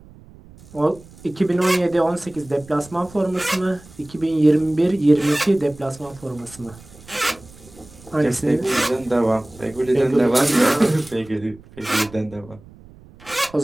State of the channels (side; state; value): right; noise; rumble, 22 dB below the sound